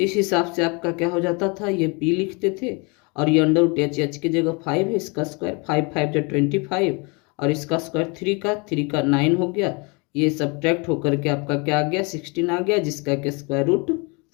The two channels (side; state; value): right; quieter; 30.3 dB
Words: हिसाब से आपका क्या हो जाता था, ये P लिखते थे और ये √h की जगह 5 है, इसका स्क्वायर 5 5 25 और इसका स्क्वायर 3 का 9 हो गया। ये सब्ट्रैक्ट होकर के आपका क्या आ गया, 16 आ गया, जिसका के